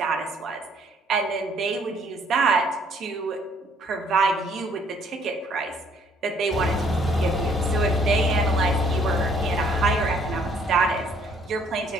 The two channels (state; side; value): normal; both; correlation 0.63